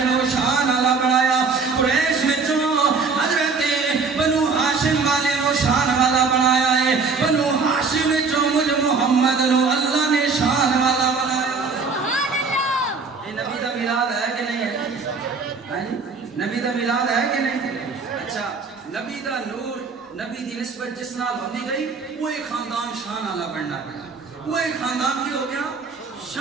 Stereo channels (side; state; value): left; quieter; 4.7 dB